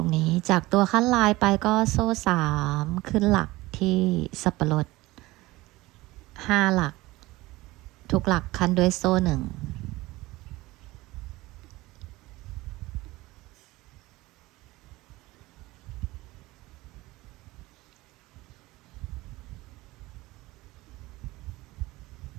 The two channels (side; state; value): left; quieter; 19.7 dB